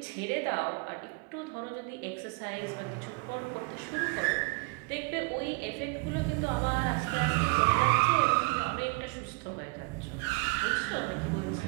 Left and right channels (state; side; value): quieter; left; 28.9 dB